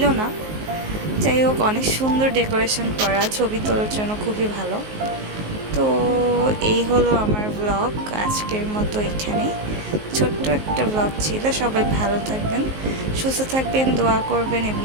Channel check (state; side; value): late; left; 19 ms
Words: না। যাই হোক, অনেক সুন্দর ডেকোরেশন করা, ছবি তোলার জন্য খুবই ভালো। তো এই হলো আমার ব্লগ আজকের মতো। এখানেই ছোট্ট একটা ব্লগ ছিল। সবাই ভালো থাকবেন, সুস্থ থাকবেন, দোয়া করবেন এবং